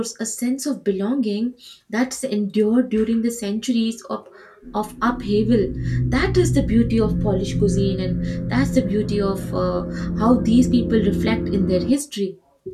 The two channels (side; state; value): both; identical; correlation 1.00